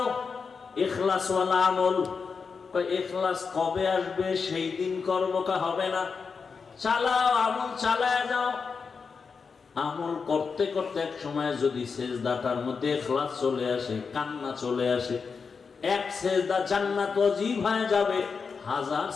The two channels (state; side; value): quieter; right; 5.3 dB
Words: ইখলাসওয়ালা আমল। ইখলাস কবে আসবে? সেই দিন করবো, কা হবে না? চালাও, আমল চালায় যাও। আমল করতে করতে এক সময় যদি সেজদাটার মধ্যে ইখলাস চলে আসে, কান্না চলে আসে, এক সেজদা জান্নাত ওয়াজিব হয়ে যাবে, 1000